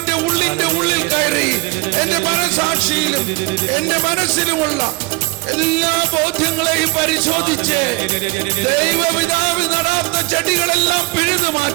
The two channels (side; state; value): left; quieter; 25.9 dB